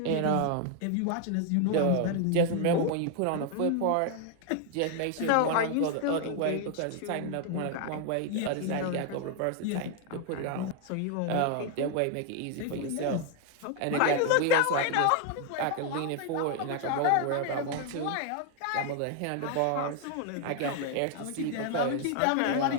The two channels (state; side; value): different; both; correlation 0.00